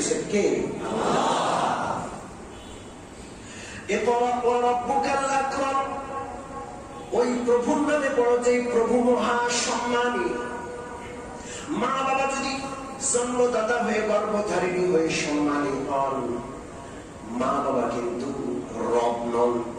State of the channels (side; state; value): both; identical; correlation 1.00